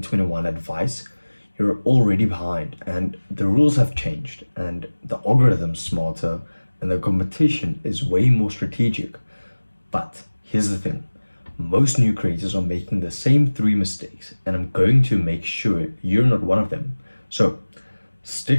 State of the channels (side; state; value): both; inverted; correlation -1.00